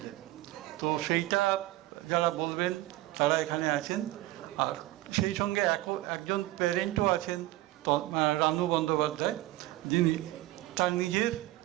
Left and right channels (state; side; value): quieter; left; 17.3 dB